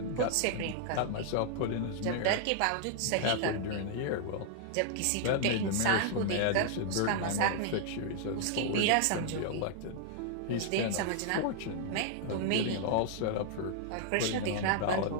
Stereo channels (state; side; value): different; both; correlation 0.00